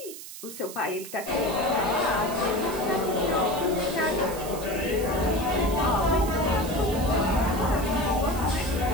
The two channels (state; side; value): noise; right; hiss, 12 dB below the sound